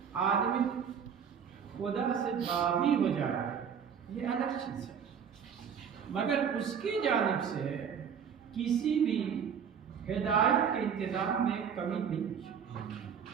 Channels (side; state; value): left; quieter; 7.4 dB